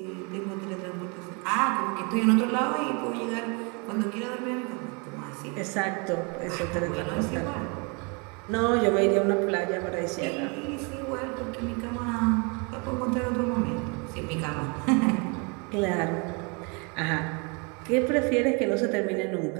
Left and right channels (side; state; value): left; quieter; 32.6 dB